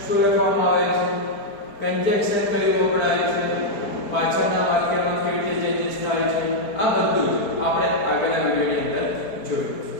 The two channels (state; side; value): late; right; 4.4 ms